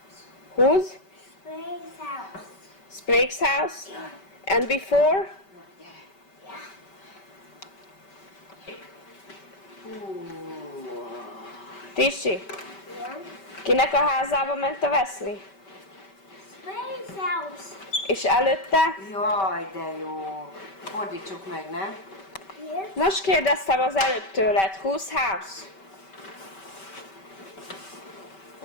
Whose? Sprague's house? And before? Na, gyere. Hú. Tisi, kinek a házába ment a Wesley? És előtte? Jaj, de jó. Fordítsuk meg, nem? Most kérdeztem az előtt tőled. Whose house?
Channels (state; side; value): late; right; 5.2 ms